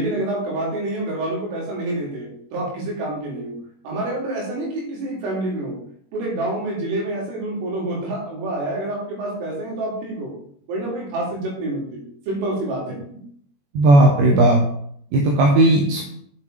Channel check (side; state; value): left; late; 21 ms